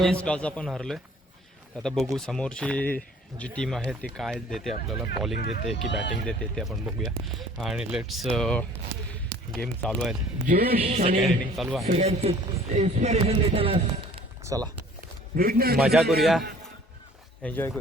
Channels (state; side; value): normal; both; correlation 0.52